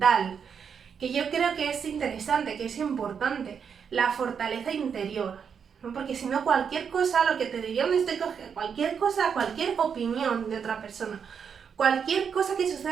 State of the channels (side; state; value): left; quieter; 6.9 dB